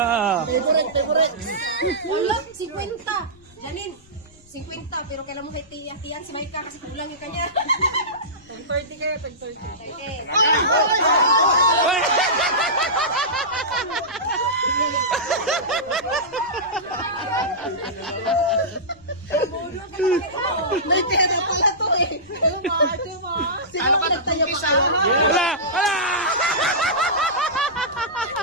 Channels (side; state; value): left; noise; rumble, 28 dB below the sound